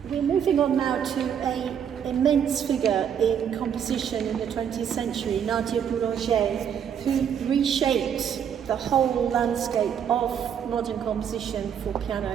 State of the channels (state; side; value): quieter; left; 8.3 dB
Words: We're moving on now to an immense figure in composition in the 20th century, Nadia Boulanger, who reshaped the whole landscape of modern composition for